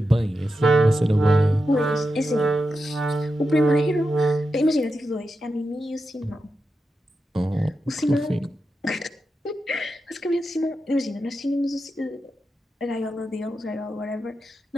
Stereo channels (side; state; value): both; normal; correlation 0.89